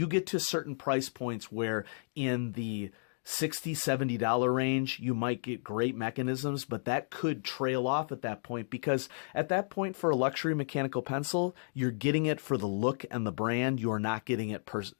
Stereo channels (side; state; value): right; silent; digital silence